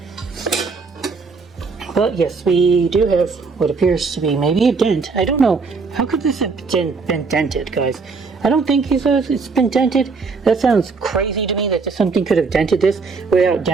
But yes, we do have what appears to be maybe a dent. I don't know. How could this have been dented, guys? I don't think it's been dented. That sounds crazy to me that something could have dented this without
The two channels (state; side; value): quieter; left; 4.5 dB